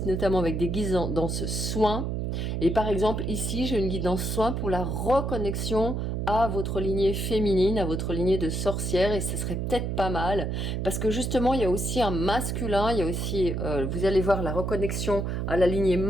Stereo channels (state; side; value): noise; right; hum, 1 dB below the sound